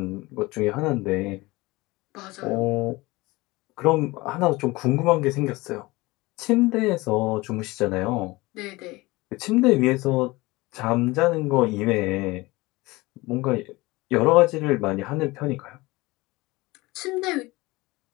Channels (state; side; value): quieter; right; 21.7 dB